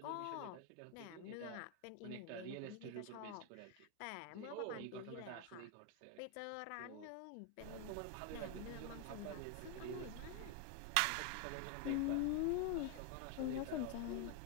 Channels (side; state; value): both; different; correlation 0.01